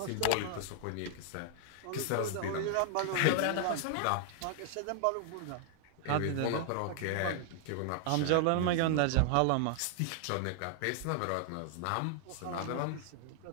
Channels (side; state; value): both; different; correlation 0.00